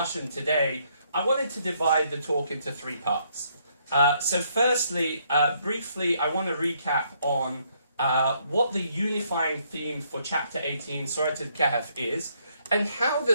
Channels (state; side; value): inverted; both; correlation -0.71